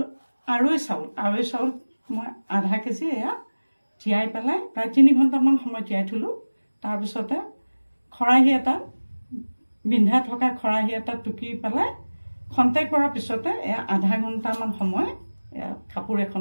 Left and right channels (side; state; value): both; inverted; correlation -1.00